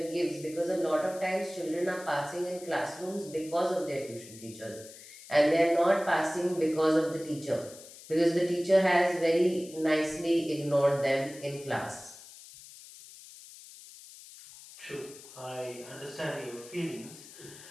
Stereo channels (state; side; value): noise; left; hiss, 18 dB below the sound